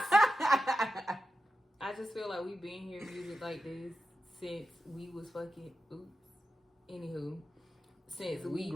I just feel like we've been hearing music like this since we was fucking. Anywho, since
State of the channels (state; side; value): normal; both; correlation 0.91